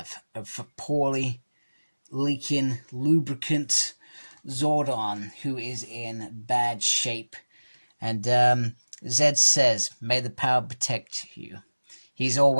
a poorly leaking lubricant Zordon, who is in bad shape. And Zed says, "May the power protect you." He's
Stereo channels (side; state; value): both; inverted; correlation -1.00